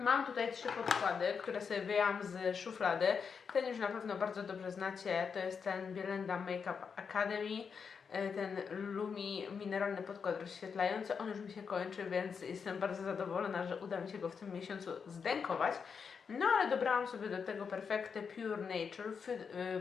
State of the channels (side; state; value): right; quieter; 6.1 dB